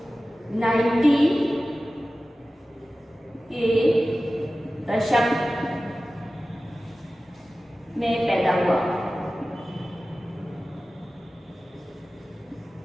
90 के दशक में पैदा हुआ।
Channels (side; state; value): both; normal; correlation 0.96